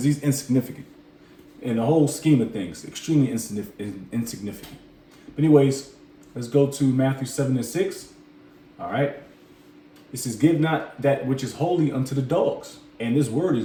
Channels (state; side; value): identical; both; correlation 1.00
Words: he's insignificant in the whole scheme of things. Extremely insignificant. But anyways, let's go to Matthew 7:6. All right. It says, "Give not that which is holy unto the dogs." And this word